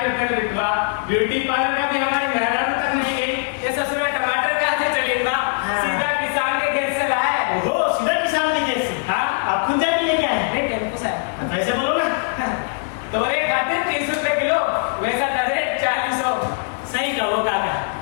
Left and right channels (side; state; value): right; silent; 65 dB below the other